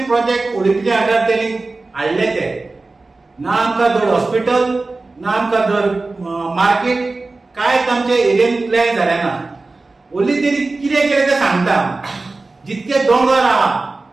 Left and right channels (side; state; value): left; quieter; 3.4 dB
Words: प्रोजेक्ट ओडीपीच्या अंडर तेणी हाडले ते. ना आमकां धड हॉस्पिटल, ना आमकां धड मार्केट, कांयच आमच्या एरियेन प्लॅन जालें ना. ओन्ली तेणी कितें केलें तें सांगता. जितके दोंगर आहा